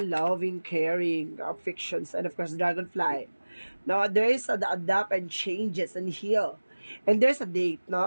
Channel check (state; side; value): inverted; both; correlation -1.00